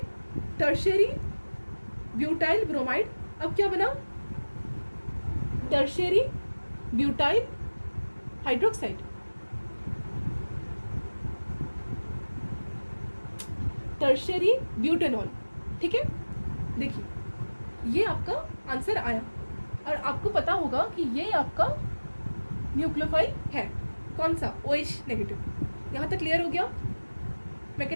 Tertiary butyl bromide. अब क्या बना? Tertiary butyl hydroxide. Tertiary butanol. ठीक है, देखिए ये आपका आंसर आया और आपको पता होगा कि ये आपका न्यूक्लियोफाइल है। कौन सा? OH negative. यहाँ तक क्लियर हो गया?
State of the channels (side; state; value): both; inverted; correlation -1.00